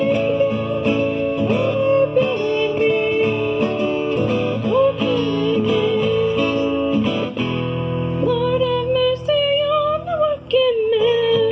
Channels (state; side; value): identical; both; correlation 1.00